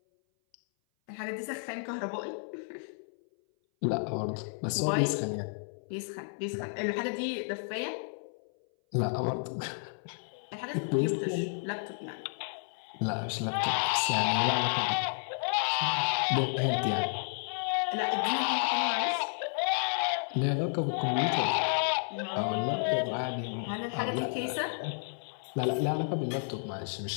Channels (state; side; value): silent; right; 57 dB below the other